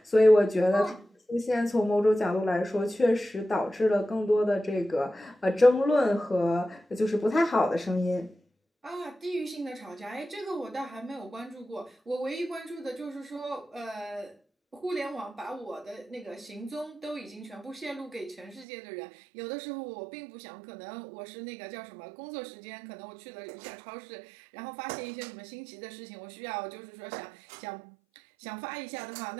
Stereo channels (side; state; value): left; drops out; at 18.7 s